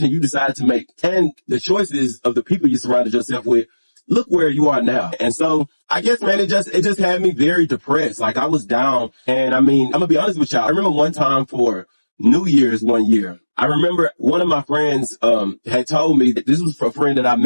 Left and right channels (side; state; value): both; inverted; correlation -1.00